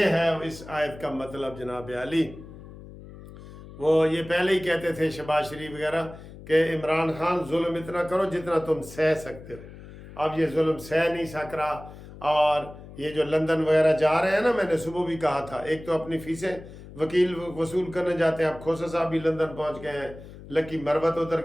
है इस आयत का मतलब जनाब अली। वो ये पहले ही कहते थे शहबाज शरीफ वगैरह कि इमरान खान जुल्म इतना करो जितना तुम सह सकते हो। अब ये जुल्म सह नहीं सक रहा, और ये जो लंदन वगैरह जा रहे हैं ना, मैंने सुबह भी कहा था, एक तो अपनी फीसें वकील वसूल करने जाते हैं, अब खोसा साहब भी लंदन पहुंच गए हैं, لکی مروت ادھر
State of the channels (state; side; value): noise; left; hum, 16 dB below the sound